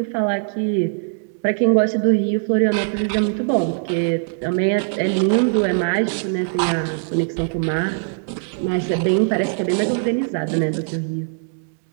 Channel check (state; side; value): silent; left; 65 dB below the other